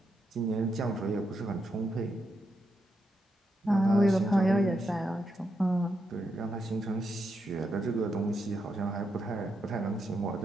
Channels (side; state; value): both; normal; correlation 0.83